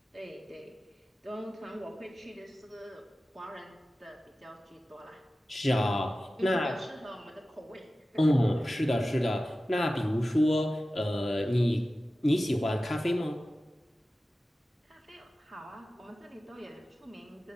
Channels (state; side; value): normal; both; correlation 0.95